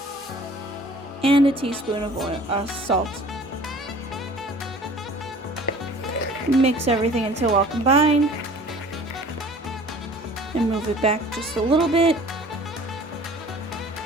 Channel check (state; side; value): normal; both; correlation 0.47